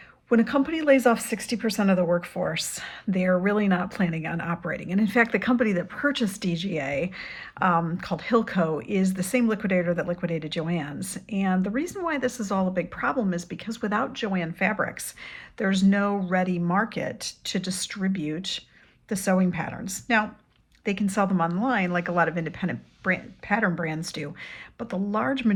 When a company lays off 60% of the workforce, they're really not planning on operating. And in fact, the company that purchased DGA, called Hilco, is the same liquidator that liquidated Joann's. And the reason why this is all a big problem is because without Joann fabrics, there's no ready market to distribute the sewing patterns. Now, they can sell them online like a lot of independent pattern brands do, but the large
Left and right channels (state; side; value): identical; both; correlation 1.00